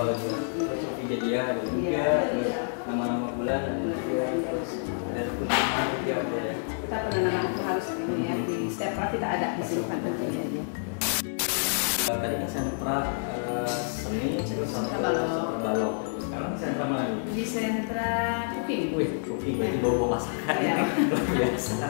juga. Terus video ada juga. Nama-nama bulan ada juga. Terus ada rukun juga ada ya. Kita penanaman itu harus ini ya di setiap kelas kita ada di sini kan tentunya. Tadi kan sentra seni terus sentra balok. Sekarang di sentra mana nih? Di sentra cooking. Wih, cooking berarti bawa masakan ya. Luar biasa.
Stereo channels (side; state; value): right; silent; 59 dB below the other